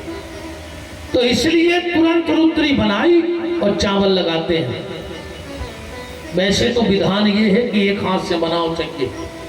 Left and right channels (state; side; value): identical; both; correlation 1.00